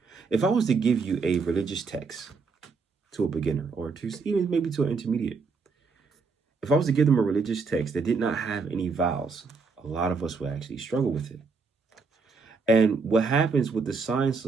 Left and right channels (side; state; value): left; quieter; 4.6 dB